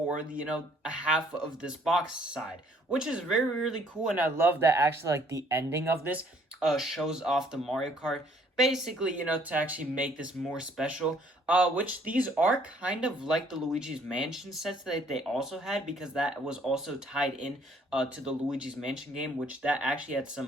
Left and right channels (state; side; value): normal; both; correlation 0.62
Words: the, a half of this box side, which is very, really cool. And I love that actually the ending of this shows off the Mario Kart, basically, to actually make this more special, which these are kind of like the Luigi's Mansion sets that they also had, because that was also tied in to the Luigi's Mansion game, which that actually had